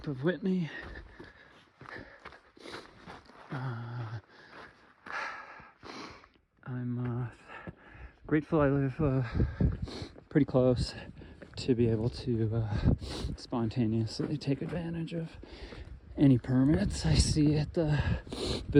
of Whitney. I'm grateful I live pretty close to be able to spontaneously take advantage of any permits I see at the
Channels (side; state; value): both; identical; correlation 1.00